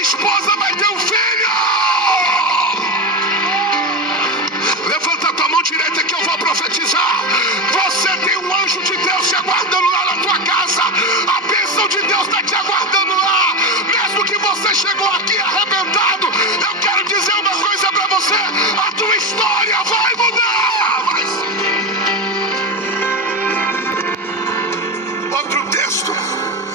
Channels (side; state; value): both; normal; correlation 0.18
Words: vai ter um filho. Levanta a tua mão direita que eu vou profetizar. Você tem um anjo de Deus te aguardando lá na tua casa. A bênção de Deus está te aguardando lá.